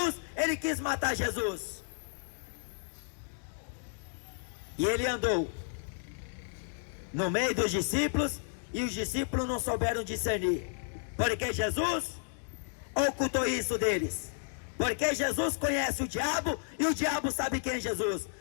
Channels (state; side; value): silent; right; digital silence